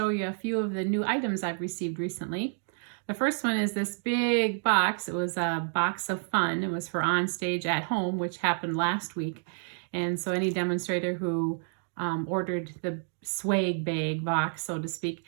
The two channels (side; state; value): left; silent; 58 dB below the other